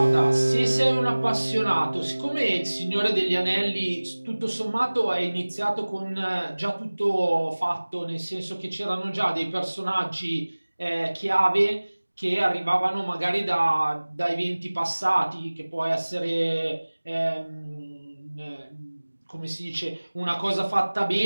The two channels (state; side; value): inverted; both; correlation -1.00